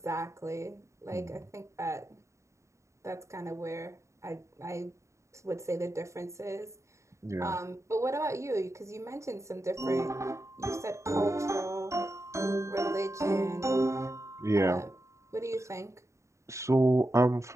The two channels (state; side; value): late; left; 0.14 ms